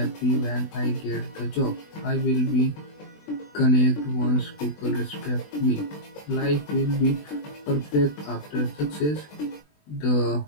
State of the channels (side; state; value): right; late; 20 ms